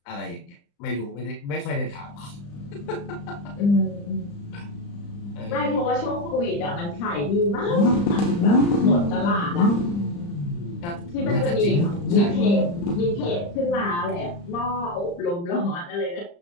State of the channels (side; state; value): right; late; 35 ms